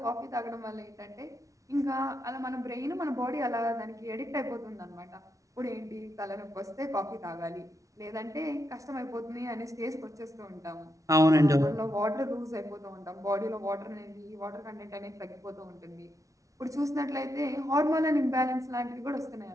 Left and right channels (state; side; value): late; left; 0.16 ms